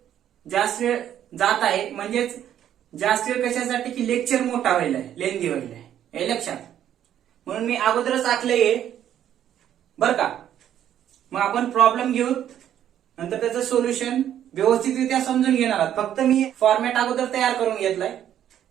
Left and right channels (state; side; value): quieter; left; 10.6 dB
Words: जास्त वेळ जात आहे, म्हणजेच जास्त वेळ कशासाठी की लेक्चर मोठा व्हायला आहे, लेंदी व्हायला आहे. हे लक्षात. म्हणून मी अगोदरच आखलंय बर का. मग आपण प्रॉब्लेम घेऊ, नंतर त्याचं सोल्युशन व्यवस्थितरित्या समजून घेणार आहात. फक्त मी फॉर्मॅट अगोदर तयार करून घेतलाय,